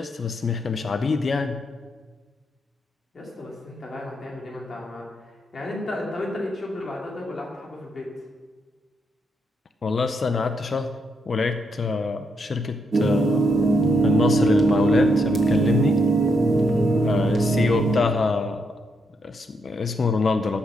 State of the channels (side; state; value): both; normal; correlation 0.78